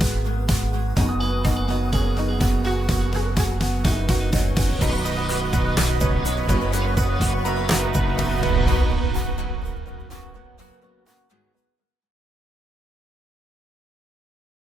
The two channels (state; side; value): normal; both; correlation 0.85